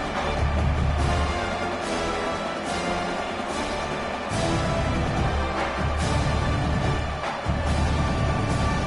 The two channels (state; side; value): identical; both; correlation 1.00